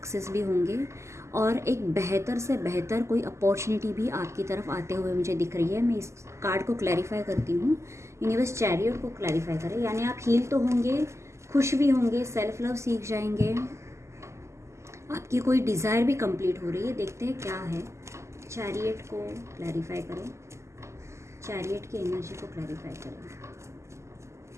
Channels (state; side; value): late; left; 0.13 ms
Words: भी होंगे और एक बेहतर से बेहतर कोई अपॉर्चुनिटी भी आपकी तरफ आते हुए मुझे दिख रही है। मैं इस कार्ड को क्लैरिफाई करती हूँ। यूनिवर्स चैरियट को क्लैरिफाई करें, यानी आप हील तो होंगे, खुश भी होंगे, सेल्फ लव सीख जाएंगे, आपकी कोई डिज़ायर भी कंप्लीट हो रही है। देखते हैं क्या है। चैरियट को क्लैरिफाई करें, चैरियट की एनर्जी को क्लैरिफाई करें।